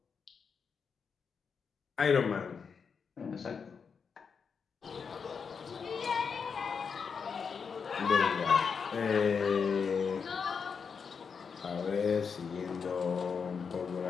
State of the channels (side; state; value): right; quieter; 6.0 dB